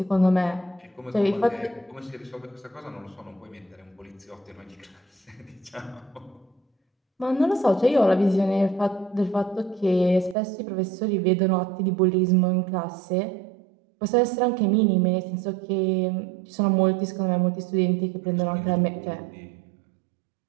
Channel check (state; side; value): drops out; left; at 10.4 s